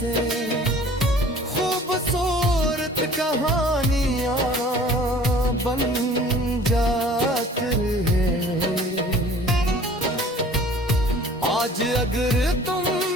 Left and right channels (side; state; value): both; normal; correlation 0.49